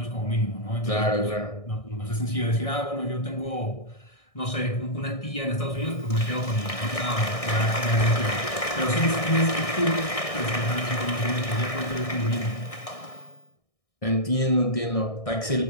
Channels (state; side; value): late; right; 1.6 ms